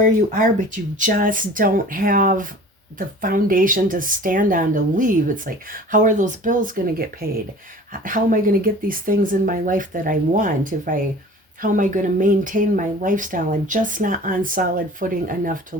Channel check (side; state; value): both; normal; correlation 0.43